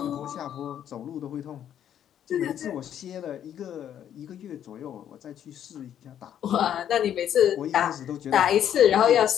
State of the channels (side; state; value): right; quieter; 10.0 dB